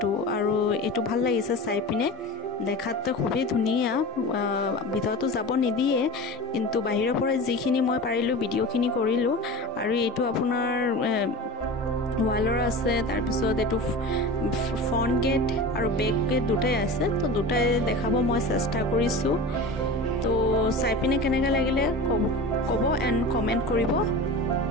আৰু এইটো ভাল লাগিছে চাই পিনে। দেখাত খুবেই ধুনীয়া, ভিতৰতো যাব নিদিয়ে, কিন্তু বাহিৰৰ পৰা যিখিনি মই পাৰিলোঁ ভিডিঅ'খিনি কৰিলোঁ। আৰু এইটো আপোনাৰ ৱালৰ আছে, তাৰপিছত এইটো ফ্ৰণ্ট গেট আৰু বেক গেট দুটাই আছে। তো দুটাই দেখাব মই চেষ্টা কৰিছোঁ। তো চাই পিনে কেনেকৈ লাগিলে ক'ব এণ্ড কমেণ্ট কৰিব।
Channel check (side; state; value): both; normal; correlation 0.31